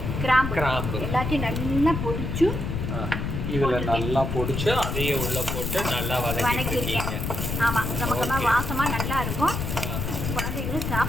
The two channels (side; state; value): left; noise; rumble, 3 dB below the sound